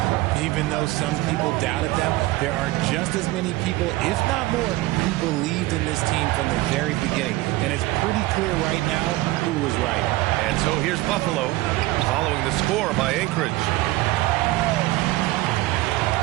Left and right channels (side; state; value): left; quieter; 18.9 dB